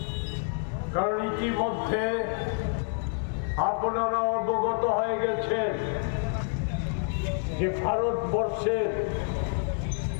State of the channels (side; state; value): right; silent; 59 dB below the other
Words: কারণ ইতিমধ্যে আপনারা অবগত হয়ে গেছেন যে ভারতবর্ষের